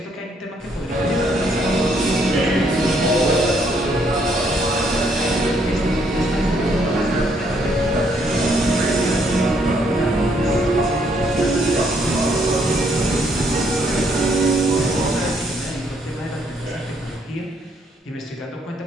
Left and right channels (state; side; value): normal; both; correlation 0.70